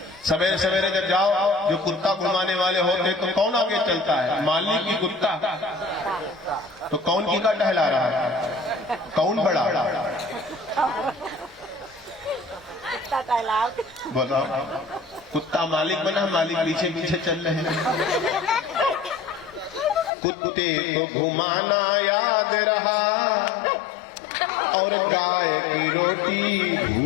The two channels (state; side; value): drops out; right; at 20.1 s